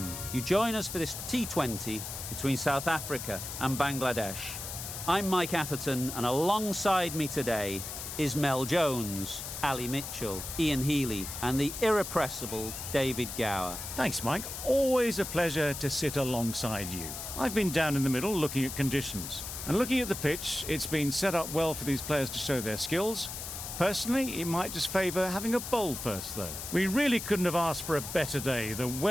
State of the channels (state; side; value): noise; left; hiss, 7 dB below the sound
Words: You join us for this T20 between South Africa and Bangladesh. I'm Mike Atherton, and alongside me today is Mel Jones, Ali Mitchell, Ian Healy, and the irrepressible David Gower. Thanks, Mike. Always a pleasure to sit alongside you. I've been down in the middle looking at conditions. And looking at the pitch, it's been set up well for these players to show their skills. Personally, it might just favour having a bowl first, though. We really couldn't have asked for a better day. The